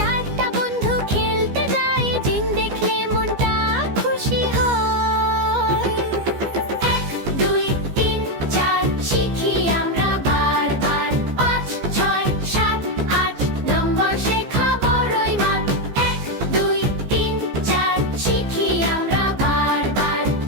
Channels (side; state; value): left; late; 15 ms